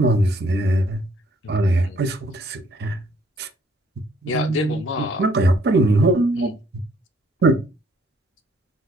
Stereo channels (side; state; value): both; normal; correlation 0.64